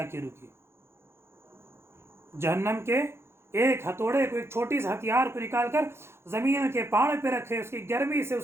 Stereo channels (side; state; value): left; late; 0.12 ms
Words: रुके। जहन्नम के एक हथौड़े को, एक छोटी सी हथियार को निकाल कर ज़मीन के पहाड़ पे रखे, उसकी गर्मी से,